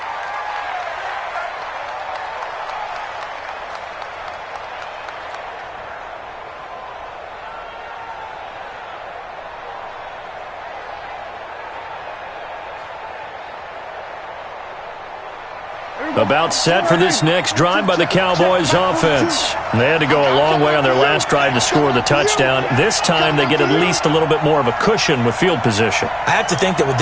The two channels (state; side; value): identical; both; correlation 1.00